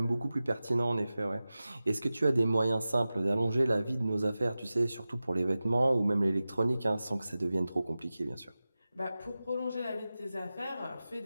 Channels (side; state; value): both; inverted; correlation -0.95